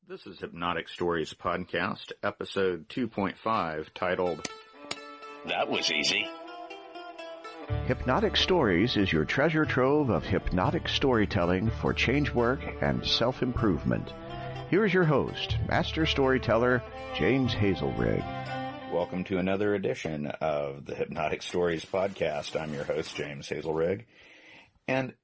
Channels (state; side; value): identical; both; correlation 1.00